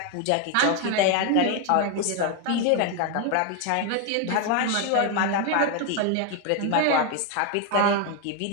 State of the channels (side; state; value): both; different; correlation 0.01